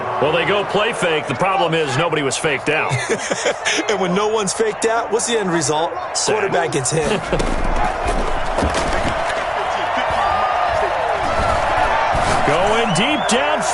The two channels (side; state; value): both; identical; correlation 1.00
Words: Well, they go play fake. The problem is nobody was faked out. And when no one's faked out, what's the end result? Quarterback gets hit. Going deep